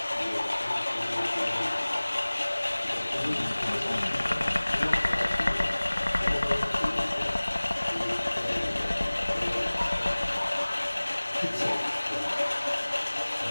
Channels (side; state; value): both; inverted; correlation -1.00